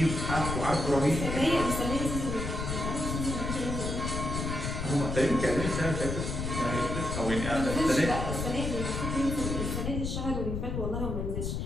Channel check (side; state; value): left; noise; rumble, 3 dB below the sound